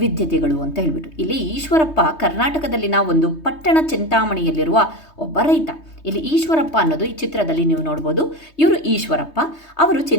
ಅಂತ ಹೇಳ್ಬಿಟ್ಟು ಇಲ್ಲಿ ಈಶ್ವರಪ್ಪ ಕರ್ನಾಟಕದಲ್ಲಿನ ಒಂದು ಪಟ್ಟಣ ಚಿಂತಾಮಣಿಯಲ್ಲಿರುವ ಒಬ್ಬ ರೈತ. ಇಲ್ಲಿ ಈಶ್ವರಪ್ಪ ಅನ್ನೋದು ಈ ಚಿತ್ರದಲ್ಲಿ ನೀವು ನೋಡ್ಬೋದು. ಇವರು ಈಶ್ವರಪ್ಪ, ಅವರು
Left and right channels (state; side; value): late; right; 3.2 ms